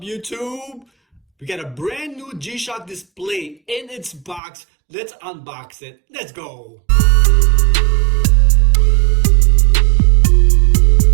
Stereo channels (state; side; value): drops out; left; at 4.4 s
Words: YouTube? We got a brand new G-Shock display in its box. Let's unbox it. Let's go.